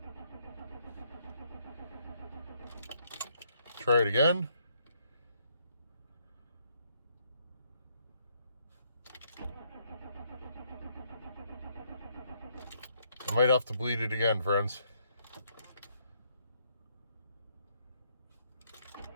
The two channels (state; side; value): inverted; both; correlation -0.72